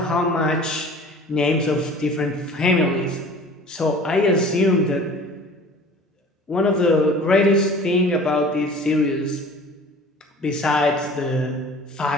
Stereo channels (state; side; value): normal; both; correlation 0.44